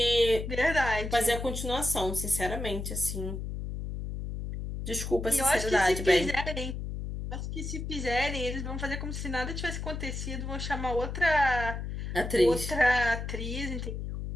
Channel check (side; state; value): left; noise; hum, 5 dB below the sound